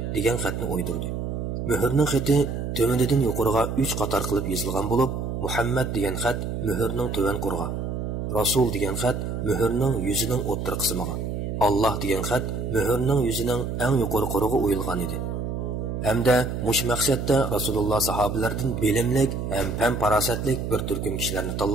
degan xatni o'ydirdi. Muhrning xati tömenidan yuqoriga 3 qator qilib yozilgan bo'lib, Muhammad degan xat muhrning to'van qurg'a, Rasul degan xat muhrning yuzining o'ttir qismiga, Alloh degan xat muhrning yuzining eng yuqori qurg'iga o'yilgan edi. Hamda mush maqsadda Rasululloh sahobalardan bilimlik ham fan farosatlik bir turkum kishilarni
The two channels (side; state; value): right; noise; hum, 3 dB below the sound